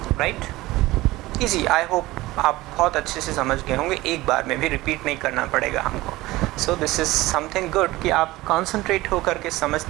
राइट। ईजी, आई होप आप बहुत अच्छे से समझ गए होंगे, एक बार में भी रिपीट नहीं करना पड़ेगा हमको। So this is something good कि आप कॉन्सेंट्रेट होकर के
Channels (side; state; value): left; quieter; 18.7 dB